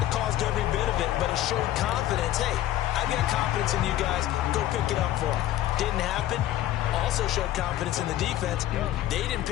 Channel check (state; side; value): quieter; right; 13.5 dB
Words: It caused every bit of it, but it showed confidence. Hey, I've got confidence in you guys. Go pick it up for them. Didn't happen. Also showed confidence in the defense. They didn't